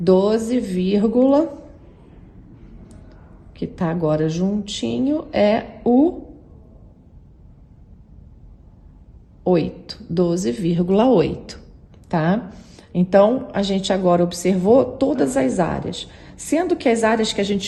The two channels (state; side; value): identical; both; correlation 1.00